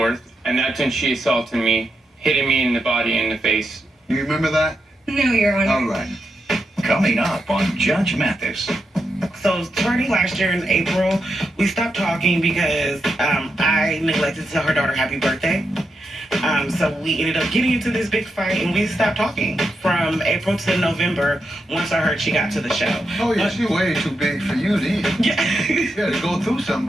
And that's when she assaulted me, hitting me in the body and the face. You remember that? No, Your Honor. All right. Coming up on Judge Mathis. So starting last year in April, we stopped talking because I neglected to tell her daughter happy birthday. So we ended up getting into this big fight and we stopped talking from April to November once I heard she got to the show. Oh, yeah, she's way too big for you then. Yeah. You gotta go through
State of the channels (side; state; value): both; normal; correlation 0.85